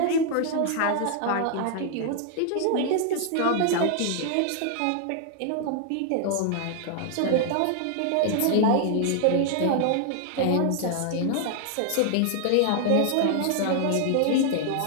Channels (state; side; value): different; both; correlation 0.00